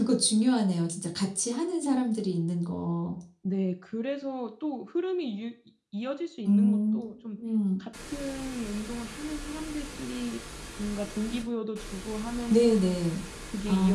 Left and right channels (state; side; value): identical; both; correlation 1.00